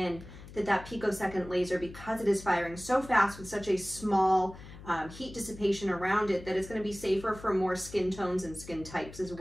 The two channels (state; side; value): noise; left; hum, 16 dB below the sound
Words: that picosecond laser, because it is firing so fast with such a small heat dissipation around it, that it's going to be safer for more skin tones and skin types as